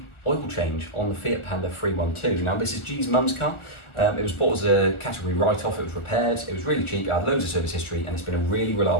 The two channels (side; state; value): right; late; 1.3 ms